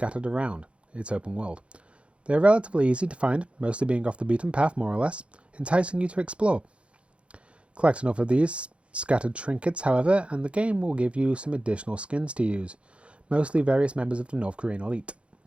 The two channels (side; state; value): left; late; 0.060 ms